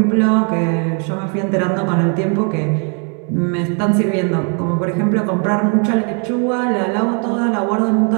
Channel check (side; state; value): left; quieter; 38.8 dB